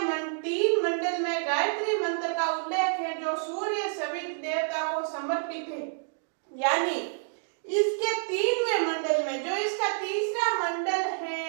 3 मंडल में गायत्री मंत्र का उल्लेख है जो सूर्य सवित देवता को समर्पित है। यानी इसके 3वें मंडल में जो इसका तीसरा मंडल है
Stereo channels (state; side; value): silent; left; digital silence